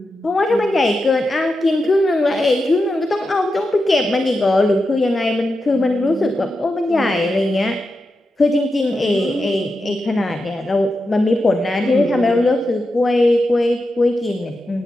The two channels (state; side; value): normal; both; correlation 0.89